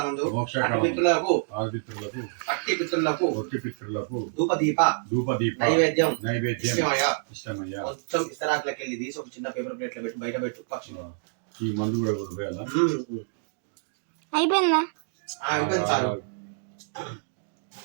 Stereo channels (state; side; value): silent; left; digital silence